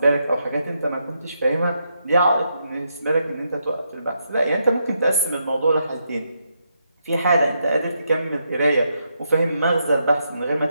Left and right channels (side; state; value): both; inverted; correlation -0.80